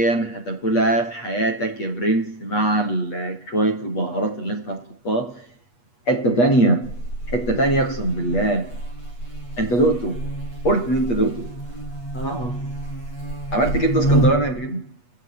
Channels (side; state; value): right; late; 8.3 ms